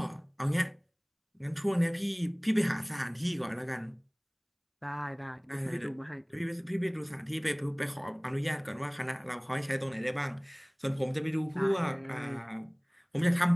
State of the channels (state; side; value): identical; both; correlation 1.00